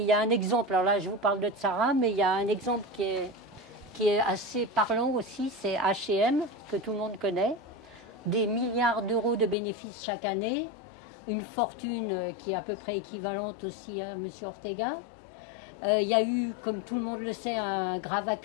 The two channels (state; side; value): drops out; right; at 9.6 s